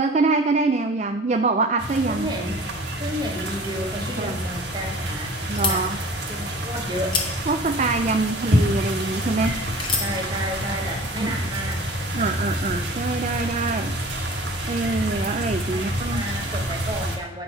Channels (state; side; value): normal; both; correlation 0.44